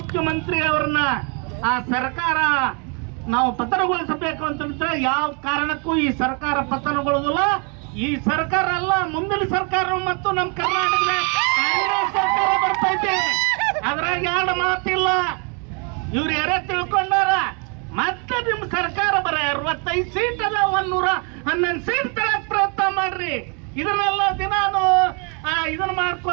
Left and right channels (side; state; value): left; quieter; 35.6 dB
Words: ಅವ್ರನ್ನ ಆ ಸರ್ಕಾರ ನಾವು ಪತನಗೊಳಿಸಬೇಕು ಅಂತಂದ್ರೆ ಯಾವ ಕಾರಣಕ್ಕೂ ಈ ಸರ್ಕಾರ ಪತನಗೊಳ್ಳುದಿಲ್ಲ. ಈ ಸರ್ಕಾರ ಅಲ್ಲ, ಮುಂದಿನ ಸರ್ಕಾರ ಮತ್ತು ನಮ್ಮ ಕರ್ನಾಟಕದ ಕಾಂಗ್ರೆಸ್ ಸರ್ಕಾರ ಬರ್ತೈತೆ. ಅದ್ರಾಗ ಎರಡು ಮಾತಿಲ್ಲ. ಇವ್ರು ಯಾರೇ ತಿಳ್ಕೊಂಡಾರ ಮತ್ತೆ ನಿಮ್ ಸರ್ಕಾರ ಬರ 65 ಸೀಟ್ ಅದ, 111 ಸೀಟ್ ತರಕ್ ಪ್ರಯತ್ನ ಮಾಡ್ರಿ. ಇದನ್ನೆಲ್ಲ ದಿನಾನು ಇದನ್ನ